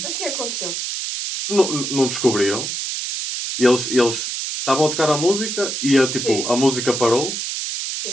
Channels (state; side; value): noise; right; hiss, 4 dB below the sound